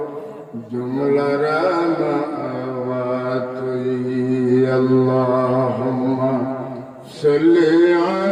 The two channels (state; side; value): identical; both; correlation 1.00